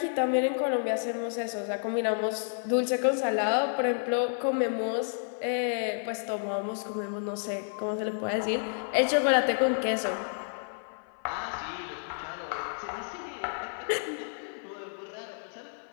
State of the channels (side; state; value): right; silent; 58 dB below the other